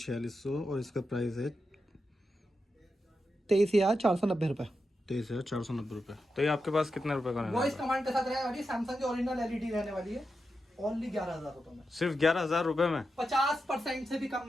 और इसका प्राइस है 23,490 रुपए। 23,490 रुपए। तो ये आपके पास कितने रुपए का रहने वॉइस वाला है? कमांड के साथ रहने वाली सैमसंग की ओरिजिनल एलईडी रहने वाली है, ओनली 11,000 रुपए में। सिर्फ 11,000 रुपए में? 50% से भी कम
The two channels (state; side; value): normal; both; correlation 0.88